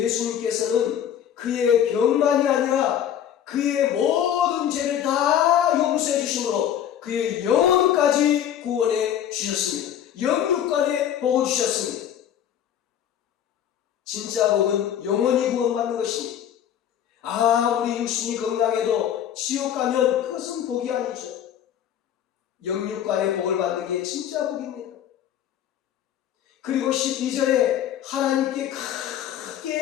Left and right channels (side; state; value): right; quieter; 10.0 dB